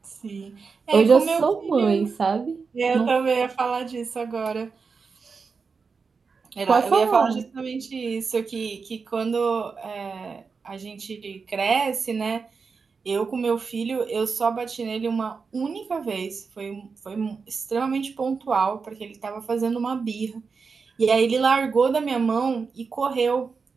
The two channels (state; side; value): quieter; left; 5.1 dB